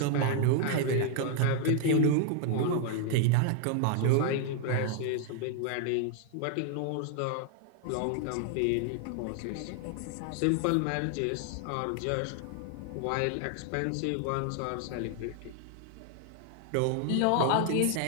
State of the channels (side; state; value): both; different; correlation 0.00